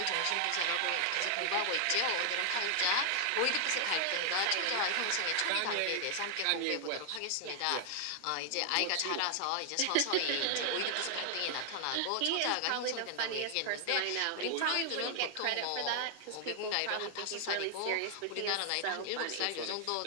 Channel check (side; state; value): both; different; correlation 0.00